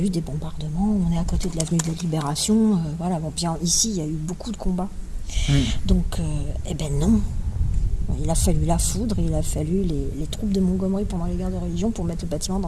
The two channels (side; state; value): both; identical; correlation 1.00